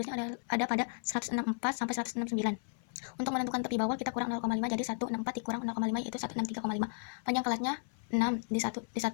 ada pada 164 sampai 169. Untuk menentukan tepi bawah kita kurang 0,5, jadi 164 dikurang 0,5 yaitu 163,5. Panjang kelasnya 6, di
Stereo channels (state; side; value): silent; right; 55 dB below the other